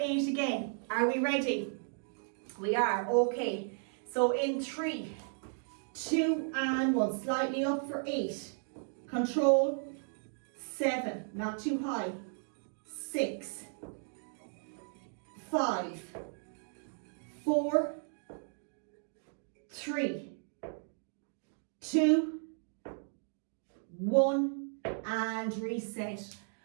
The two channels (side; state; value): left; silent; 54 dB below the other